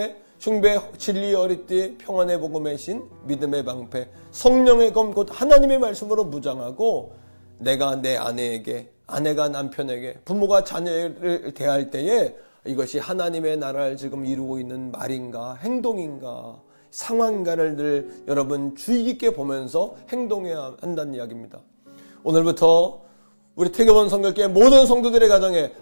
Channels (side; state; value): both; inverted; correlation -1.00